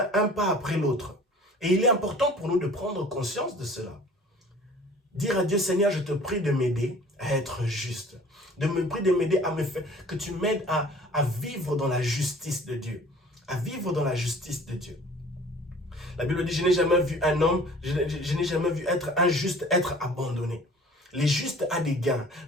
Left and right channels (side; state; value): both; normal; correlation 0.48